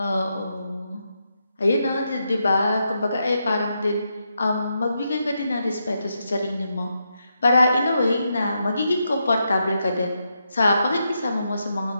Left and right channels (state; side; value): inverted; both; correlation -0.83